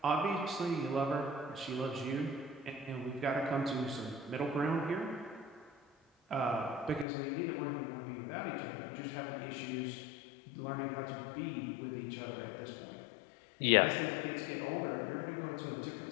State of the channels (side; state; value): right; drops out; at 7.1 s